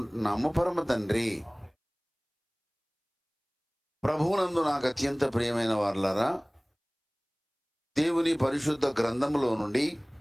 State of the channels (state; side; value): identical; both; correlation 1.00